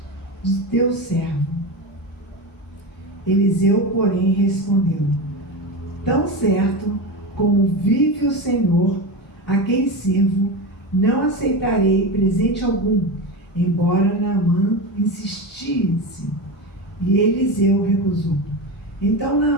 de teu servo. Eliseu, porém, respondeu: tão certo como vive o Senhor, a quem sirvo, não aceitarei presente algum, embora Naamã insistisse. E Eliseu recusou. Então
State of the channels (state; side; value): normal; both; correlation 0.21